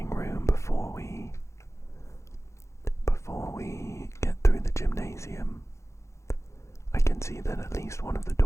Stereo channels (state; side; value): late; right; 0.14 ms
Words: room before we get through the gymnasium. I can see that at least one of the